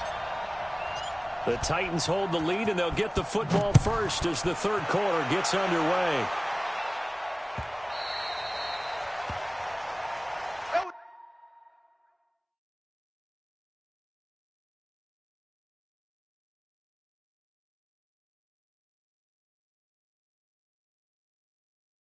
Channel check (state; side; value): identical; both; correlation 1.00